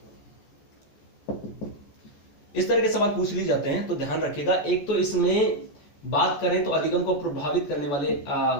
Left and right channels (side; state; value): right; late; 14 ms